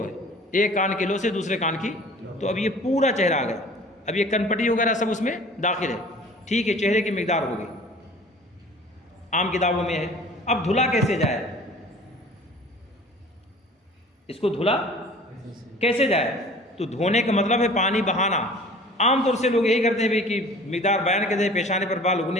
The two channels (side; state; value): both; normal; correlation 0.46